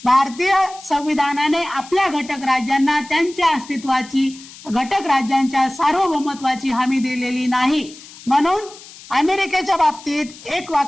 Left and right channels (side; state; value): left; noise; hiss, 19 dB below the sound